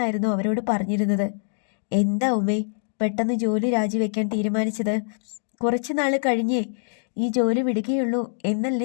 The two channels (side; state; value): right; silent; digital silence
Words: അവരോട് പറഞ്ഞിരുന്നത്. എന്താ ഉമ്മേ പെട്ടെന്ന് ജോലി രാജിവെക്കാൻ തീരുമാനിച്ചത്? കുറച്ചു നാൾ കഴിഞ്ഞേ ഈ ജോലി വിടുകയുള്ളൂ